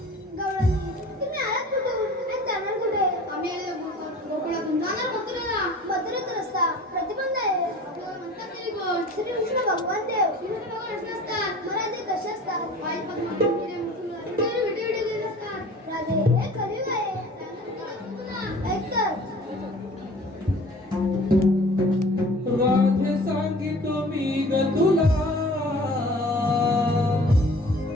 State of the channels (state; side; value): normal; both; correlation 0.45